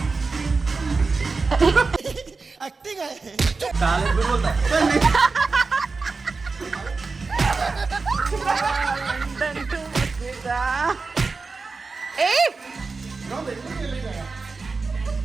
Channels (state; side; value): quieter; left; 4.2 dB